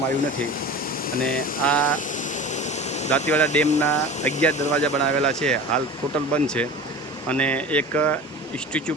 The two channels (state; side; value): normal; both; correlation 0.35